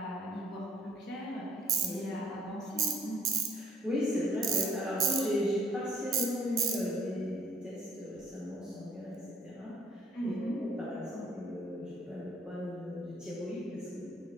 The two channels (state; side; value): normal; both; correlation 0.62